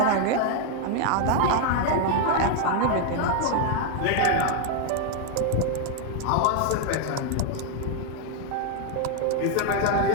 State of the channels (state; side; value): different; both; correlation 0.00